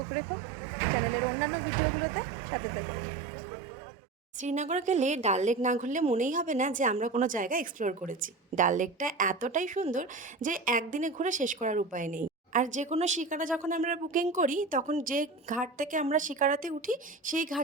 রেখো চ্যানেলের অন্যান্য ভিডিওগুলোতে, সাথে থেকো। শ্রীনগর গেলে ডাল লেক না ঘুরলে মনেই হবে না যে আমরা কোনো জায়গা এক্সপ্লোর করেছি। ডাল লেকটা এতটাই সুন্দর যে একদিনে ঘুরে শেষ করার উপায় নেই। আর যে কোনো শিকারা যখন আমরা বুকিং করি তখন যে ঘাট থেকে আমরা শিকারাতে উঠি সেই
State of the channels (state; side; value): quieter; left; 3.9 dB